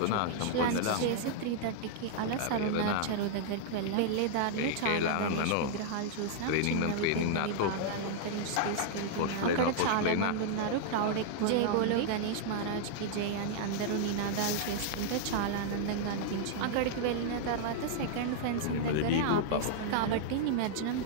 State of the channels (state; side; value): different; both; correlation -0.01